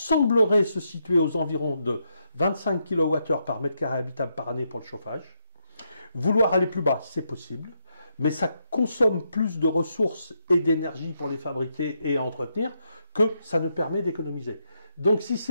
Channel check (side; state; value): both; inverted; correlation -0.80